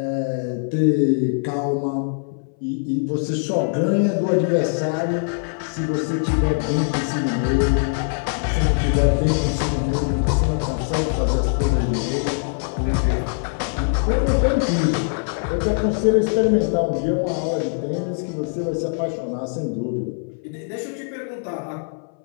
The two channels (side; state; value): right; silent; 62 dB below the other